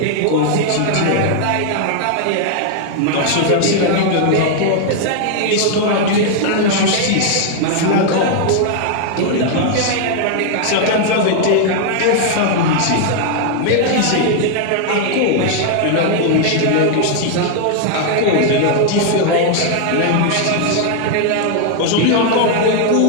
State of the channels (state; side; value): different; both; correlation 0.00